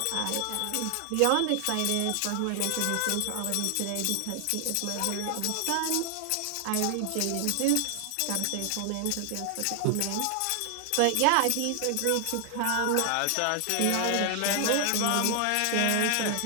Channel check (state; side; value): different; both; correlation 0.00